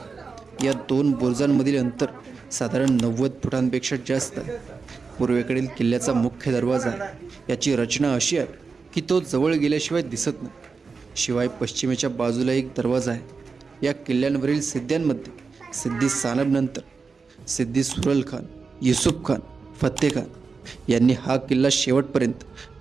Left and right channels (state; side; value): quieter; left; 4.8 dB